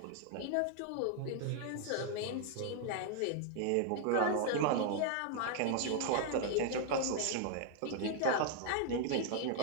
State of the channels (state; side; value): different; both; correlation 0.00